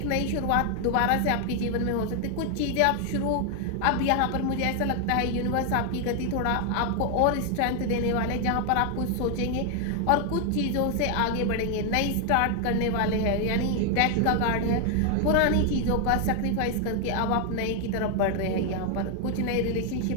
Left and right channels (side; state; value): both; different; correlation 0.00